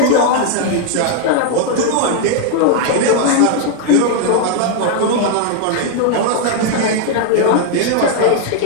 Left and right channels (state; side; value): different; both; correlation 0.00